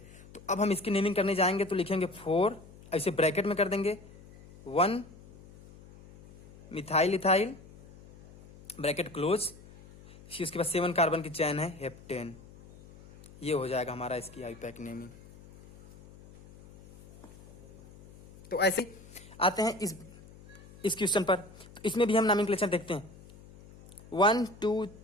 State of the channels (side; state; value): left; noise; hum, 21 dB below the sound